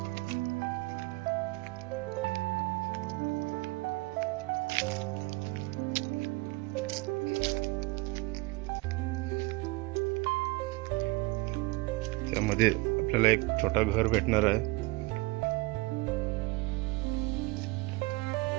त्यामध्ये आपल्याला एक छोटा घर भेटणार आहे.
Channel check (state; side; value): quieter; left; 22.9 dB